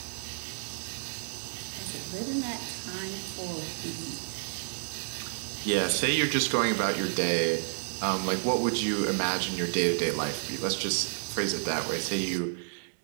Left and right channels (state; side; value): silent; left; digital silence